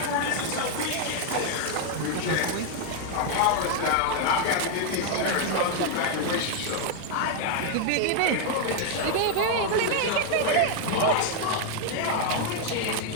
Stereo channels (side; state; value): both; different; correlation 0.01